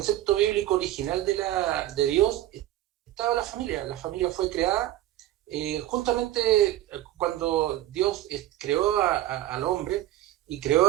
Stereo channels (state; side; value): quieter; left; 14.0 dB